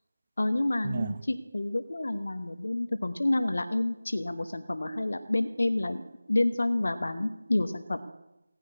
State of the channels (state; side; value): inverted; both; correlation -0.99